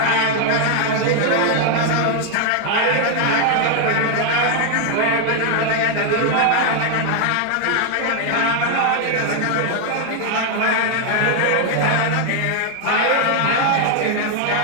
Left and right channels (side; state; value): both; different; correlation 0.00